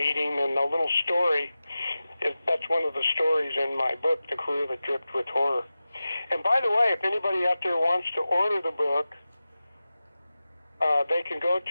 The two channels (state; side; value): inverted; both; correlation -0.94